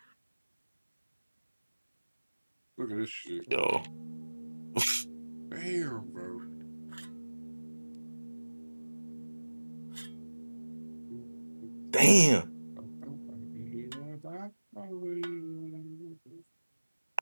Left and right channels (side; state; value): both; inverted; correlation -1.00